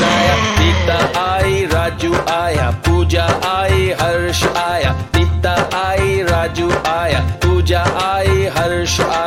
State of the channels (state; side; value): identical; both; correlation 1.00